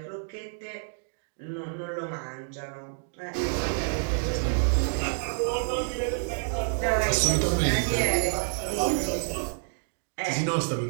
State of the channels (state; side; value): silent; left; digital silence